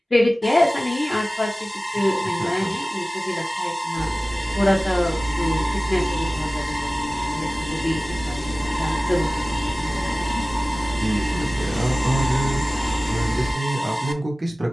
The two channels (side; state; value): both; normal; correlation 0.97